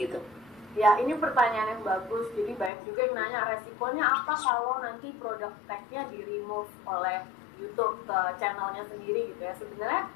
Ya, ini pertanyaan yang bagus. Jadi banyak juga yang nanya resikonya apa kalau nanti produk tag-nya di remove oleh YouTube ke channelnya sendiri gitu ya. Sebenarnya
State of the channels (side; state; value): right; drops out; at 2.7 s